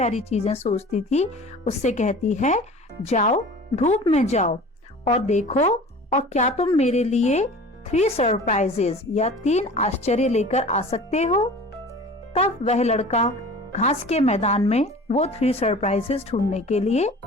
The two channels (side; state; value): both; normal; correlation 0.41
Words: चीजें सोचती थी, उससे कहती है, जाओ धूप में जाओ और देखो और क्या तुम मेरे लिए 3 सरप्राइजेस या 3 आश्चर्य लेकर आ सकते हो. तब वह लड़का घास के मैदान में वो 3 सरप्राइजेस ढूंढने के लिए